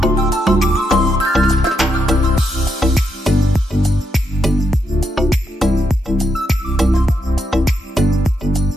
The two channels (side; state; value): both; normal; correlation 0.81